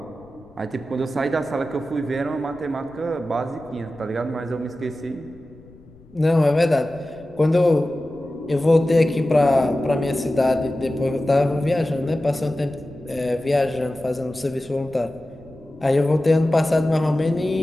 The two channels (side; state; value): left; noise; rumble, 25 dB below the sound